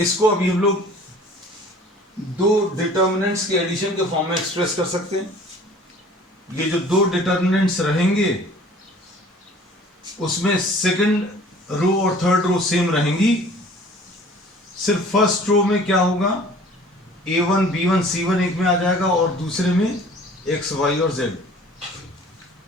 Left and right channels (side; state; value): both; normal; correlation 0.49